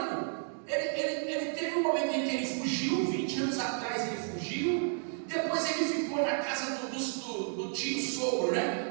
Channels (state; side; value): silent; left; digital silence